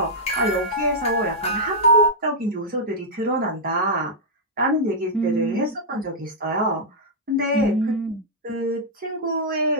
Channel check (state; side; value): normal; both; correlation -0.08